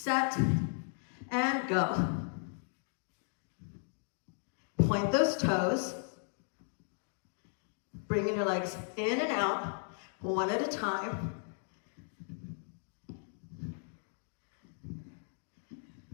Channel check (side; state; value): right; silent; 54 dB below the other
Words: and go. Point those toes. Bringing your legs in and out, one at a time.